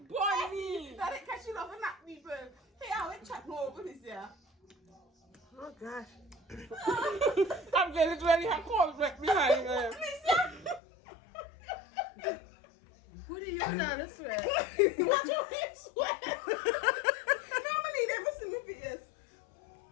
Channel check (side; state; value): right; drops out; at 10.8 s